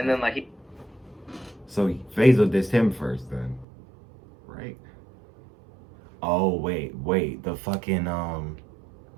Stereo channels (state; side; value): drops out; left; at 3.7 s